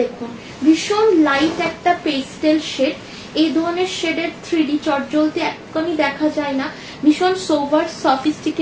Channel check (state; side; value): identical; both; correlation 1.00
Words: দেখুন, ভীষণ লাইট একটা পেস্টেল শেড। এই ধরনের শেডের 3D চটজলদি একদমই দেখা যায় না, ভীষণ সোভার